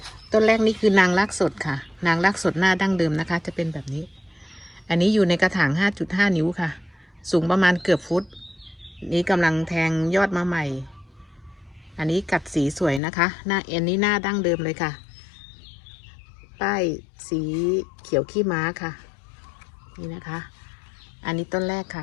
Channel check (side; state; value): right; drops out; at 13.0 s